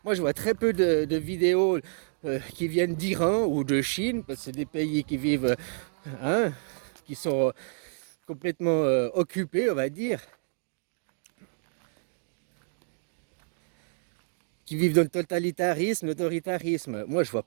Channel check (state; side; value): silent; left; digital silence